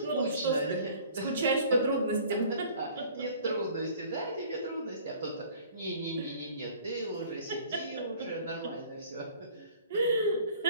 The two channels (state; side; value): inverted; both; correlation -0.50